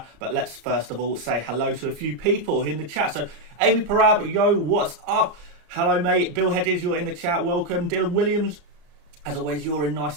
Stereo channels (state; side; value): late; left; 34 ms